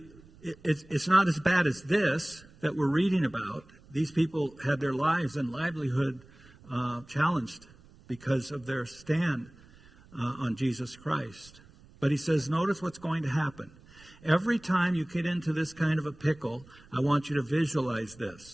it's not as bad as this that we're reading about. These people had their lives and livelihood challenged because of their stand on Jesus Christ. But he says, notice what's going to happen. Every time you get into this kind of a pickle, I want you to visualize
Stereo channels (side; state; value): right; noise; rumble, 24 dB below the sound